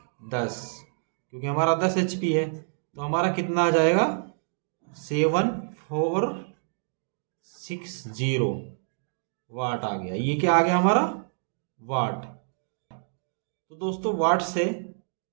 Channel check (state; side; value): silent; left; digital silence